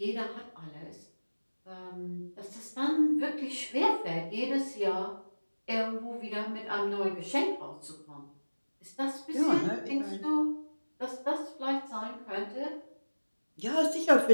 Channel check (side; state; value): both; inverted; correlation -1.00